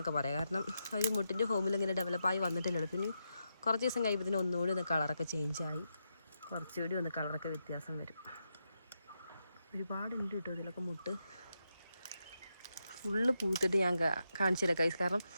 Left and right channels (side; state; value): both; inverted; correlation -0.85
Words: പറയാം. കാരണം ആ ഒരു മുട്ടിൻ്റെ ഫോമിൽ ഇങ്ങനെ ഡെവലപ്പായി വന്നിട്ടില്ലല്ലോ. പിന്നെ കുറച്ച് ദിവസം കഴിയുമ്പോൾ ഒന്നുകൂടി ഒന്ന് കളറൊക്കെ ചേഞ്ചായി കുറച്ചുകൂടി ഒന്ന് കളറൊക്കെ വ്യത്യാസം വരും. ഒരുപാടുണ്ട് കേട്ടോ ഇതിലൊക്കെ മുട്ട്. ഫുള്ള് പൂത്തിട്ട് ഞാൻ കാണിച്ചു തരാം കൈസ്. കാരണം